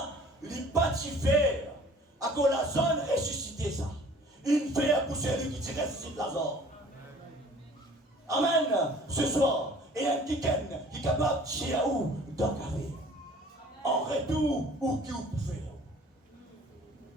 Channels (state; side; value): normal; both; correlation 0.51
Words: il partit faire à cause la zone ressuscité ça. Une fer pour celui qui ressuscite Lazare. Amen. Ce soir, il y a un petit qui est capable de chier à où dans le carré. En retour, où qui vous pouvez faire.